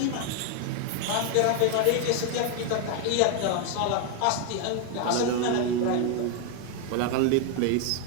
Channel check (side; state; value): both; different; correlation 0.01